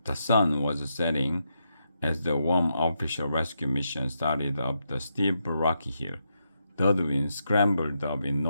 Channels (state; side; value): inverted; both; correlation -0.82